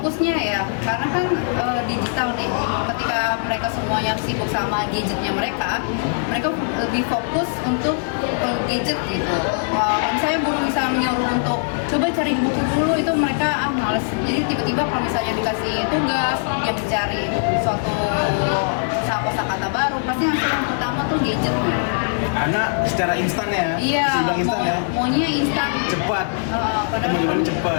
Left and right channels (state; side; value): silent; right; 65 dB below the other